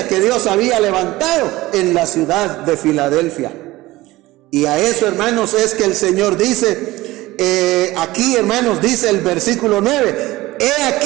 que Dios había levantado en la ciudad de Filadelfia. Y a eso, hermanos, es que el Señor dice, aquí, hermanos, dice el versículo 9, he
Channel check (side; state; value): left; quieter; 18.6 dB